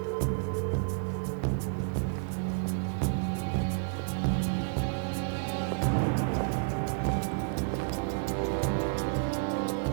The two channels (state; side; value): silent; left; digital silence